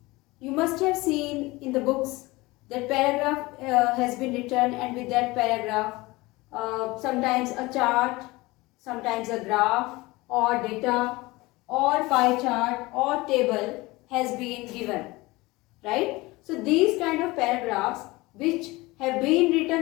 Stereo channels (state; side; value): quieter; right; 21.6 dB